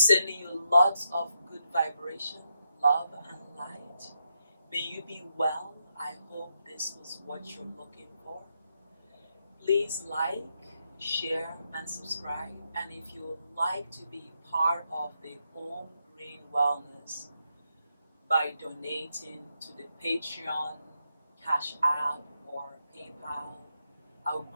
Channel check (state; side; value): inverted; both; correlation -0.82